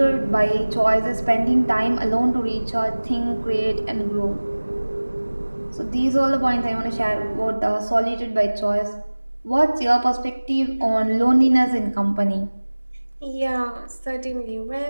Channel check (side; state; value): both; inverted; correlation -1.00